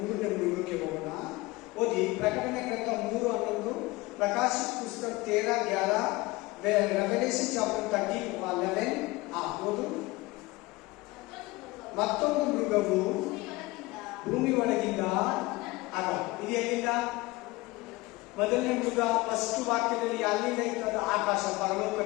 3ನೇ ಮೃಗಕ್ಕೆ ಹೋಗೋಣ. ಓದಿ ಪ್ರಕಟಣೆ ಗ್ರಂಥ 3:11, ಪ್ರಕಾಶಿತ ಪುಸ್ತಕ 13:11, ರೆವಲೇಷನ್ ಚಾಪ್ಟರ್ 30:11. ಓದು. ಮತ್ತೊಂದು ಮೃಗವು ಭೂಮಿ ಒಳಗಿಂದ ಆಗ. ಇದು ಎಲ್ಲಿಂದ? ಮೊದಲನೇ ಮೃಗ ಫಸ್ಟ್ ವಾಕ್ಯದಲ್ಲಿ ಅಲ್ಲಿಂದ ಇರ್ತದ ಆಕಾಶ,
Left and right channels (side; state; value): right; quieter; 21.5 dB